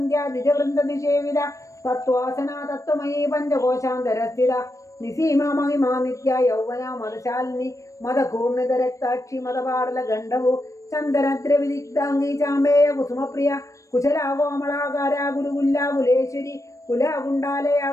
ദ്വിജവൃന്ദ നിഷേവിത തത്വാസന തത്വമയീ പഞ്ചകോശാന്തരസ്ഥിത നിസീമ മഹിമാ നിത്യ യൗവന മതശാലിനി മതകൂർണിത രക്താക്ഷി മതപാടല ഗണ്ഡവു ചന്ദനദ്രവിദിഗ്ധാംഗി ചാമ്പേയ കുസുമപ്രിയ കുശലാകോമളാകാര ഗുരുകുല്ലാകുലേശ്വരി കുലാകുണ്ടാലയ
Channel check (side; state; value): right; late; 0.15 ms